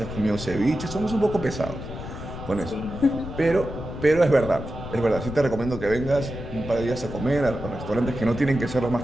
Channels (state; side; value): noise; left; rumble, 9 dB below the sound